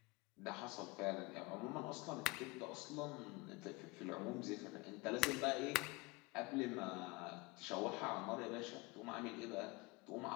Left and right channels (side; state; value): right; quieter; 23.5 dB